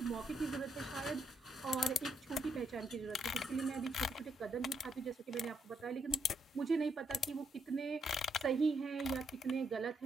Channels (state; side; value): normal; both; correlation 0.76